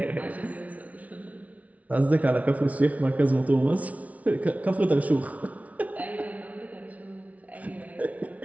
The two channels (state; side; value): late; left; 0.069 ms